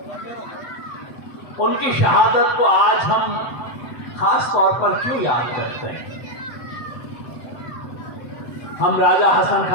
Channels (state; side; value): late; right; 7.9 ms